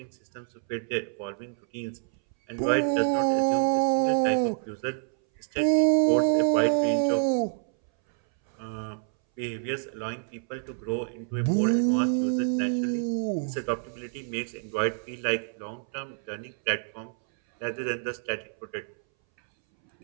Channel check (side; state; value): left; silent; 60 dB below the other